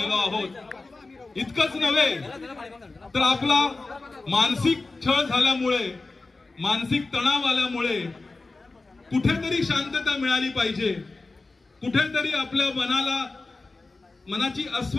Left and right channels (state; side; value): quieter; right; 3.5 dB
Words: आहोत. इतकंच नव्हे तर आपला मानसिक छळ झाल्यामुळे, मानसिक तणाव आल्यामुळे कुठेतरी शांतता मिळाली पाहिजे, कुठेतरी आपल्या मनाची